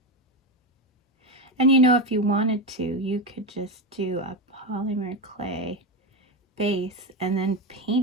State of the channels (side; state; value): both; normal; correlation 0.14